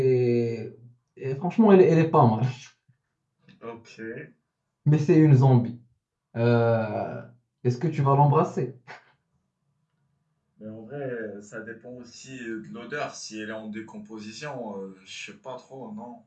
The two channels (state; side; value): identical; both; correlation 1.00